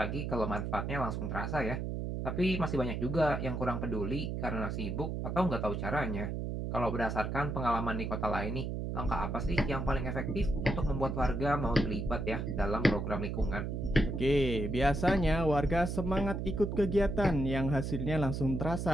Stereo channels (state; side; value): noise; right; hum, 3 dB below the sound